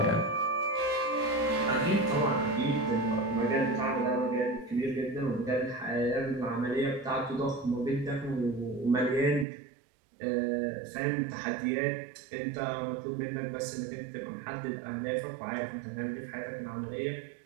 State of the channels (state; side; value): drops out; left; at 9.5 s